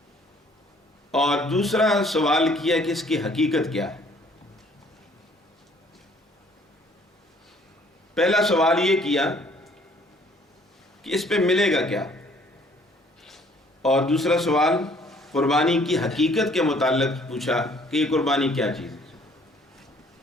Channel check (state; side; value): normal; both; correlation 0.59